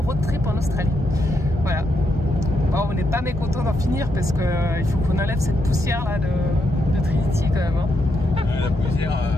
trip en Australie. Voilà. Bon, on n'est pas mécontent d'en finir parce qu'il faut qu'on enlève cette poussière là de Trinity quand même. Hein. La poussière,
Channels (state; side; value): normal; both; correlation 0.80